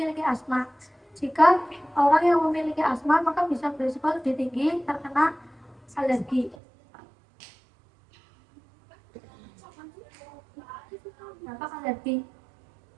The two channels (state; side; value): drops out; left; at 6.6 s